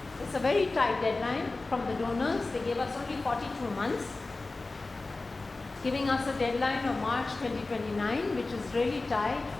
It's a very tight deadline from the donors. They gave us only 42 months, giving us a deadline of March 2029, which is really tight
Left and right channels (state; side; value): quieter; right; 3.4 dB